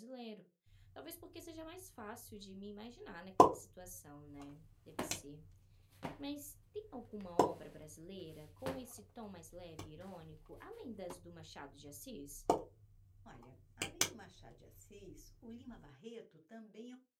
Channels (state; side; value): identical; both; correlation 1.00